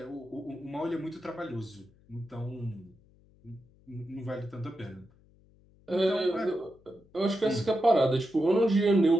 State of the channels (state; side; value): noise; left; hum, 29 dB below the sound